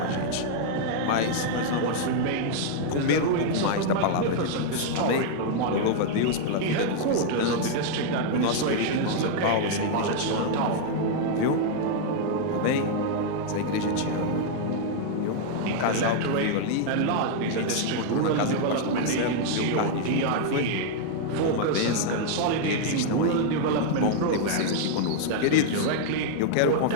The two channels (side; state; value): both; different; correlation 0.00